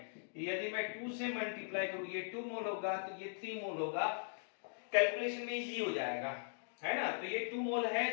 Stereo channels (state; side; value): silent; right; digital silence